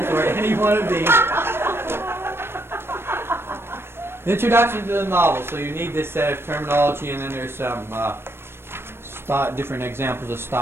or any one of these. Introduction to the novel. So you need this set of terminology, and then there's some different examples of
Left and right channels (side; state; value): left; late; 0.12 ms